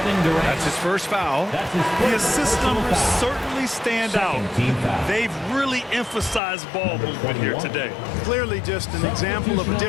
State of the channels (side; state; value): right; drops out; at 6.4 s